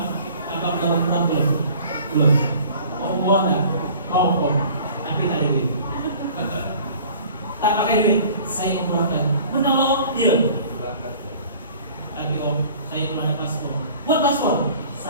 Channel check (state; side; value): inverted; both; correlation -0.48